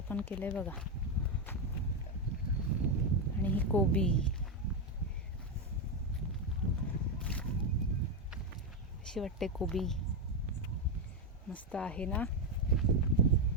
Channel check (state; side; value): normal; both; correlation 0.07